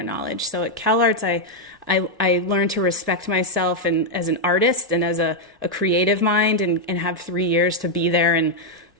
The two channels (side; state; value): both; normal; correlation 0.00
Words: knowledge. So at CalArts, I learned to respect myself and as an artist and as a creative mind, and have 3 years to be there and